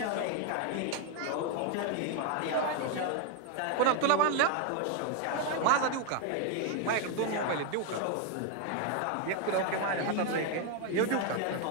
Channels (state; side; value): different; both; correlation 0.01